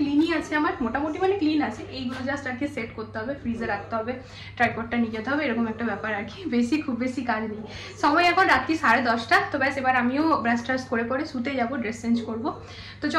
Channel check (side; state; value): both; identical; correlation 1.00